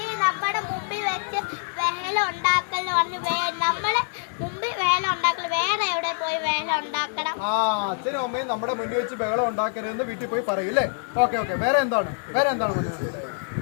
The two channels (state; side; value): silent; right; digital silence